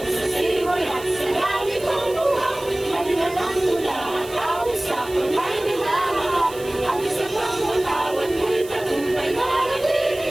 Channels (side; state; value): right; noise; hiss, 17 dB below the sound